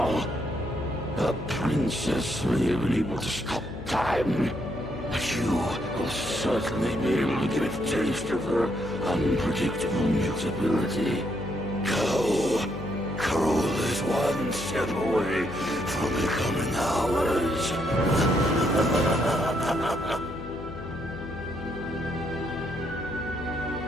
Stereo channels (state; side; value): noise; left; hum, 10 dB below the sound